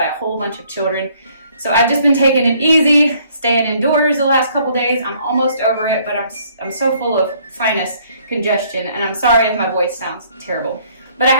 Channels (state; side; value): inverted; both; correlation -0.63